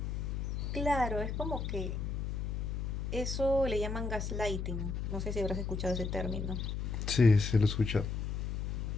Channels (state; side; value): noise; left; hum, 2 dB below the sound